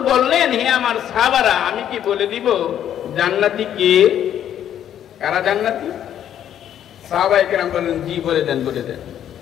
বললেন, হে আমার সাহাবারা, আমি কি বলে দিব জান্নাতি কে? কারা জান্নাতি? সাহাবায়ে কেরাম বললেন, জি বলে দেন বলে দেন।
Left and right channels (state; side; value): quieter; right; 10.3 dB